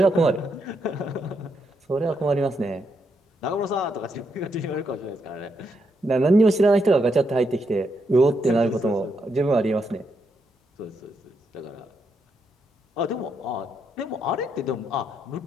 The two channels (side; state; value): both; normal; correlation 0.79